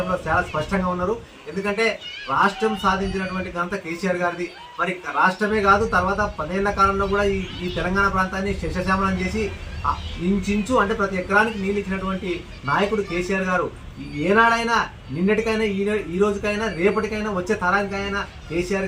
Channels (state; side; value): identical; both; correlation 1.00